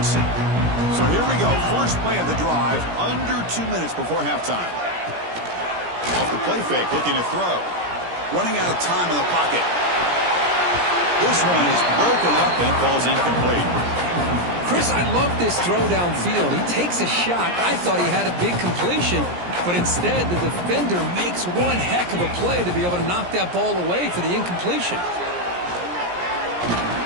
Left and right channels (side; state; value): left; late; 17 ms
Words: So here we go, first play of the drive, under 2 minutes before halftime. Off the play fake, looking to throw. Running out of time in the pocket. This one is broken up and falls incomplete. Chris, I love this throw downfield. He takes a shot. I thought he had a big completion, but instead the defender makes one heck of a play to be able to knock that ball away for the incompletion.